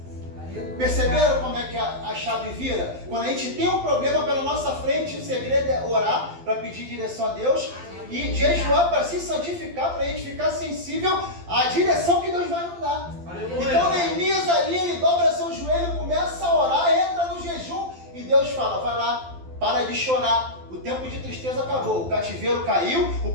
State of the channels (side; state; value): left; late; 12 ms